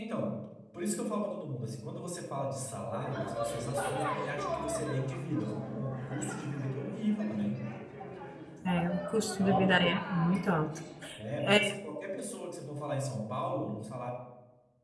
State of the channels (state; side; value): identical; both; correlation 1.00